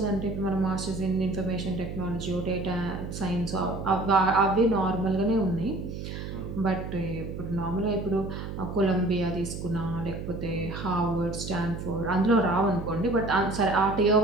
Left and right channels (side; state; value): right; noise; hum, 7 dB below the sound